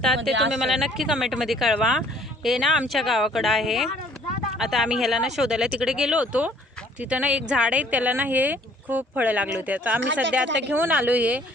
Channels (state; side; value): normal; both; correlation 0.59